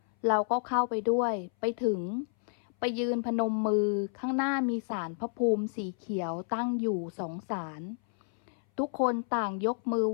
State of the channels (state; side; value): silent; right; 57 dB below the other